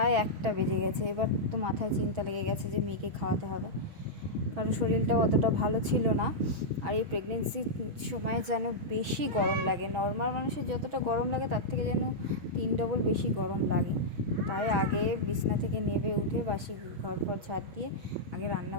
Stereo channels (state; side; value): late; left; 6.2 ms